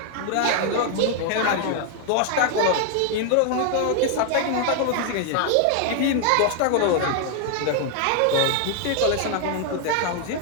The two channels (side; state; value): both; different; correlation 0.00